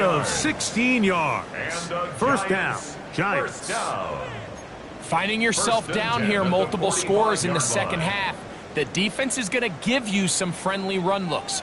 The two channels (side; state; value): both; identical; correlation 1.00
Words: 16 yards. First down, Giants. First down. Finding yourself down here, multiple scores in the second half. The defense is going to give you some friendly run looks.